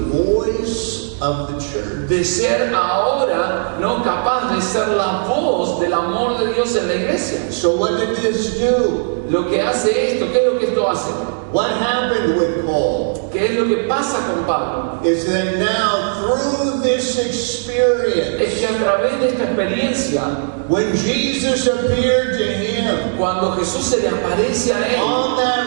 of the church. de ser ahora, ¿no?, capaz de ser la voz del amor de Dios en la iglesia. So what did this do? Lo que hace esto, ¿qué es lo que esto hace? What happened with Paul ¿Qué es lo que pasa con Pablo? is that now through this experience, Es que a través de esta experiencia, when Jesus appeared to him cuando Jesús se le aparece a él on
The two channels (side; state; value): left; silent; digital silence